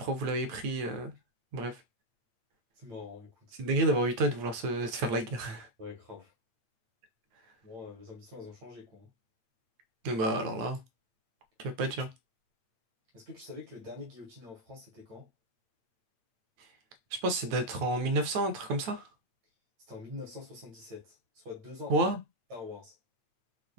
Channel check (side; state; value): left; late; 8.8 ms